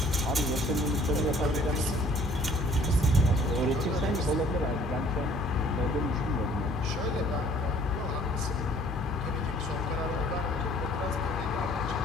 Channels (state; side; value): normal; both; correlation 0.56